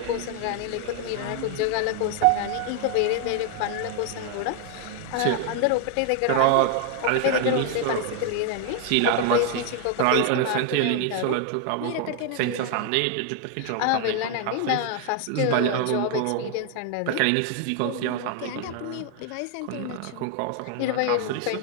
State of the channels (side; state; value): both; different; correlation 0.00